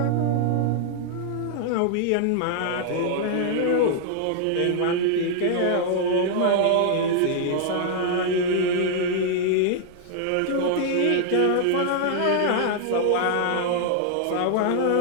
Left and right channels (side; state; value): both; different; correlation -0.01